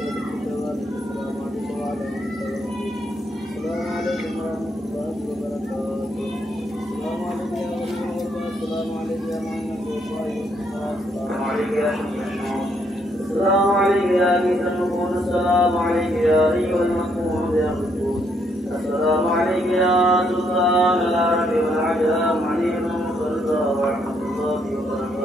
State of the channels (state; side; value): normal; both; correlation 0.73